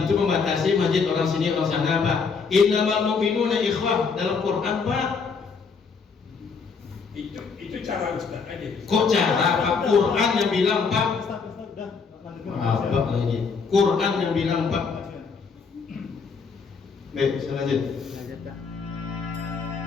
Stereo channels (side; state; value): right; quieter; 5.3 dB